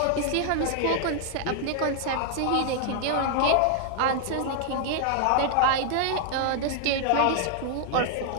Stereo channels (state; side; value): different; both; correlation 0.00